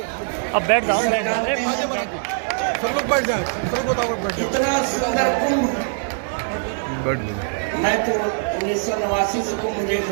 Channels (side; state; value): left; silent; digital silence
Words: अब बैठ जाओ, सब लोग बैठ जाए। इतना सुंदर कुंभ मैं तो 1989 से कुंभ देख